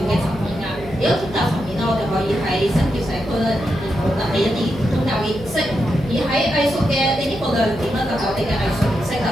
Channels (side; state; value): left; noise; hum, 16 dB below the sound